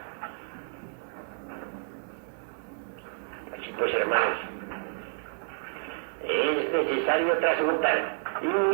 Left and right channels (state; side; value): silent; left; 58 dB below the other